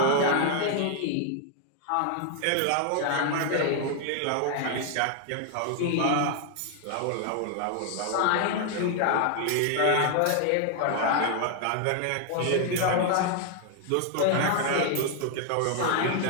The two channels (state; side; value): different; both; correlation 0.00